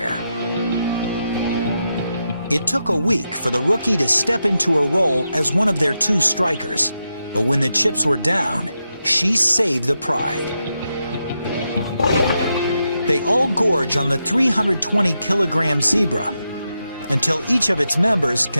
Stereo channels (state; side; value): inverted; both; correlation -0.86